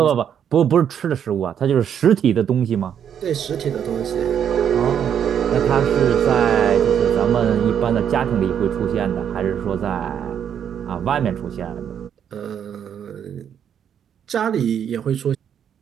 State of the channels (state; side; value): quieter; left; 8.7 dB